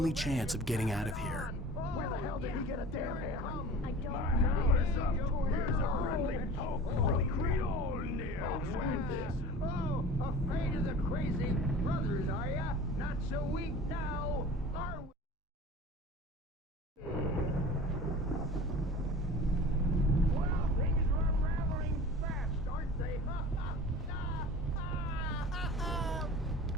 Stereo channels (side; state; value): both; normal; correlation 0.39